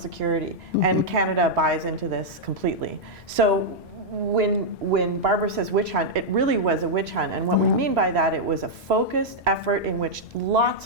And Canada buys into this completely. So when Barbara says witch hunt, it really was a witch hunt. And what we mean by that, it was a focused effort in which lots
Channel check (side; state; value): both; normal; correlation -0.05